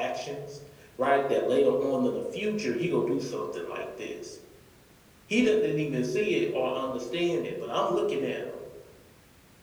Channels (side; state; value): both; identical; correlation 1.00